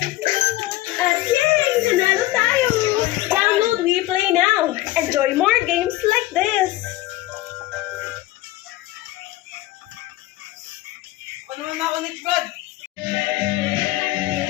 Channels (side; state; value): right; quieter; 17.3 dB